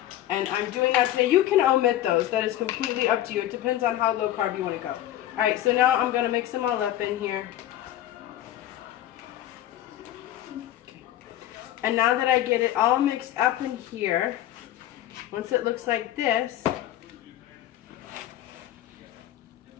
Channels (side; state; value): right; quieter; 13.0 dB